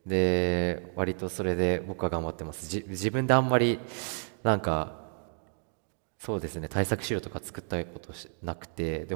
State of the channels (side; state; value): left; silent; 58 dB below the other